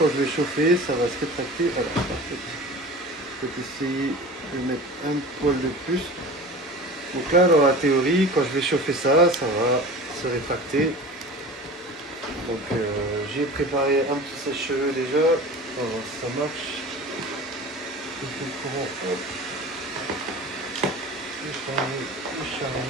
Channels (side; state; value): both; normal; correlation 0.36